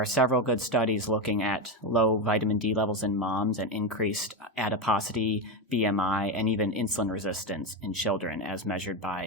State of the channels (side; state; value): both; normal; correlation 0.13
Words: several good studies looking at low vitamin D levels in moms and increased adiposity, BMI, and even insulin resistance in children as measured